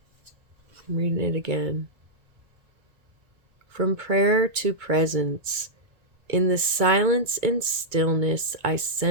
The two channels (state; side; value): late; left; 2.2 ms